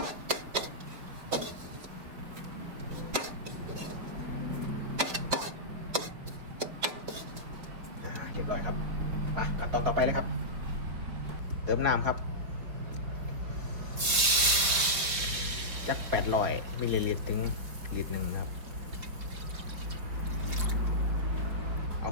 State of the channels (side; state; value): left; late; 4.8 ms